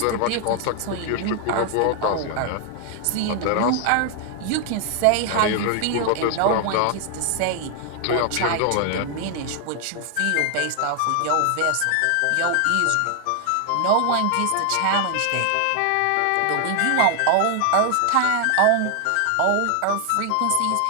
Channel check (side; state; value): both; different; correlation 0.00